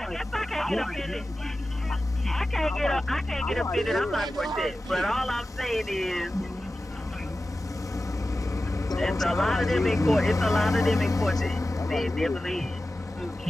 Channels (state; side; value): normal; both; correlation 0.95